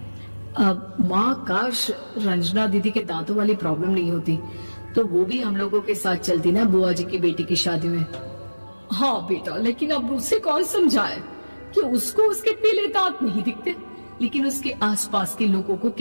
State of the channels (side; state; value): both; inverted; correlation -1.00